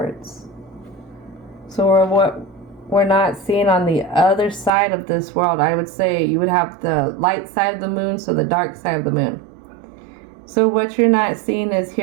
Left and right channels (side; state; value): left; drops out; at 4.7 s